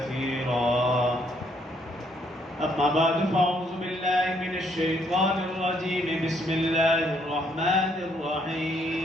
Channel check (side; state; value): both; normal; correlation 0.70